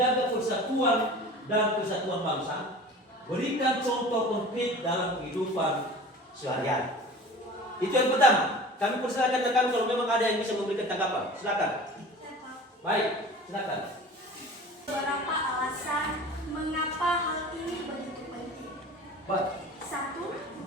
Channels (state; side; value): normal; both; correlation 0.40